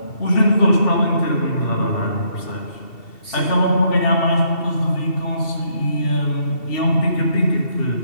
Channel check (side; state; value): right; late; 2.7 ms